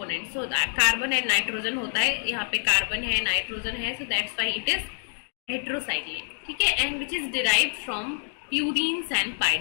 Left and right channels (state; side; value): silent; right; digital silence